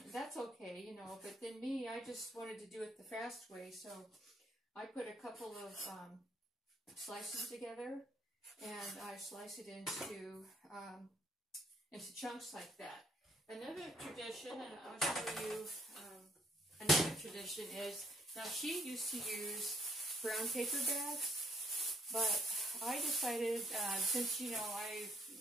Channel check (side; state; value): both; normal; correlation 0.67